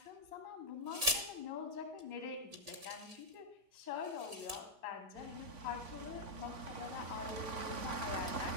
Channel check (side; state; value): left; late; 3.5 ms